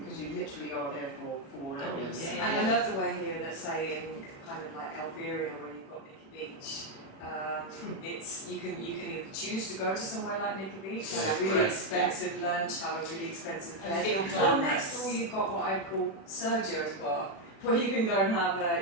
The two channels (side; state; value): right; late; 36 ms